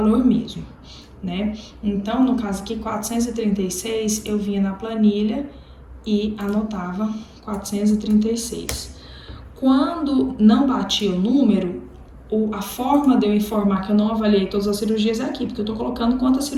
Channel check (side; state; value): both; identical; correlation 1.00